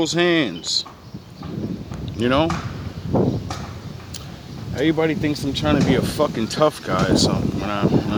hands. You know? Everybody thinks I'm trying to be a fucking tough guy or something when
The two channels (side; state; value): both; identical; correlation 1.00